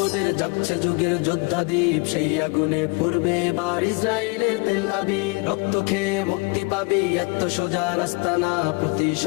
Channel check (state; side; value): quieter; right; 29.3 dB